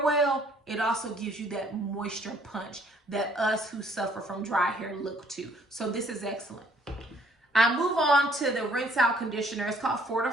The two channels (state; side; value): normal; both; correlation 0.62